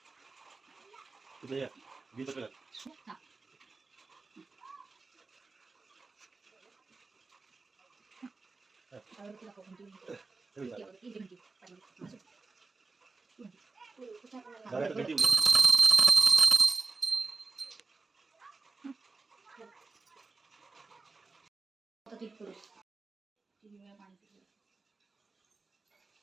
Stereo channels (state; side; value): quieter; left; 3.9 dB